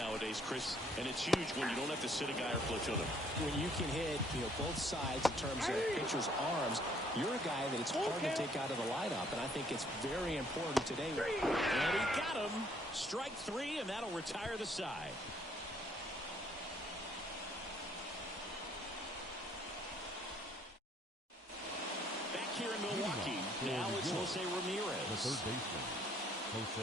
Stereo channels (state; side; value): normal; both; correlation 0.64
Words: Chris, and it's huge when you don't have to sit a guy or platoon him. When you can hit, both sides in terms of pitcher's arms, you're a guy that it's hard to take out of the lineup, and I think it's very important today. And he got him. Strike 3, and that'll retire the side. Back here in Milwaukee, now it's Jose Ramirez. The third baseman,